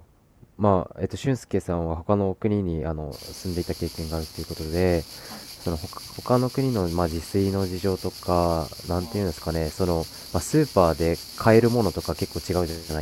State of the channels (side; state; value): both; identical; correlation 1.00